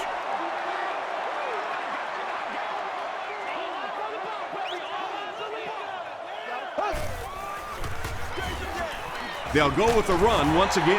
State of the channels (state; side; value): identical; both; correlation 1.00